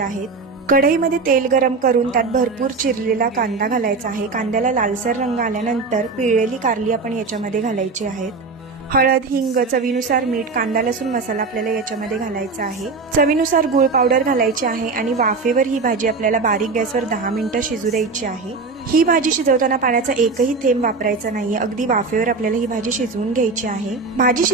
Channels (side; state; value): left; quieter; 4.2 dB